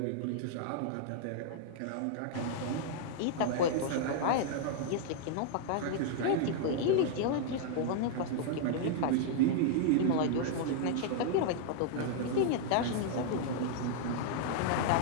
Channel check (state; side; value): different; both; correlation -0.01